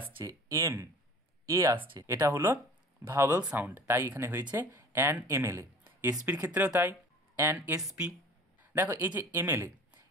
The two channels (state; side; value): normal; both; correlation 0.44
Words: এম এ আসছে, এটা হলো ভাওয়েল সাউন্ড, তাই এখানে হয়েছে অ্যান এমএলএ। এসপির ক্ষেত্রেও তাই, অ্যান এসপি। দেখো এই যে এমএলএ,